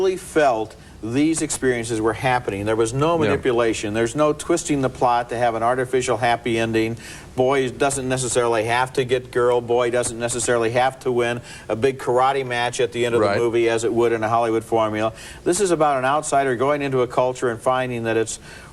felt these experiences were happening. There was no manipulation. There's no twisting the plot to have an artificial happy ending. Boy doesn't necessarily have to get girl. Boy doesn't necessarily have to win a big karate match at the end of the movie as it would in a Hollywood formula. This is about an outsider going into a culture and finding that it's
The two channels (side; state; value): both; identical; correlation 1.00